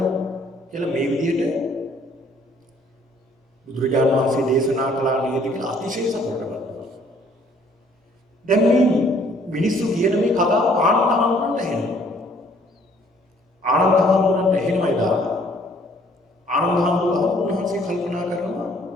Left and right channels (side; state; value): both; normal; correlation 0.61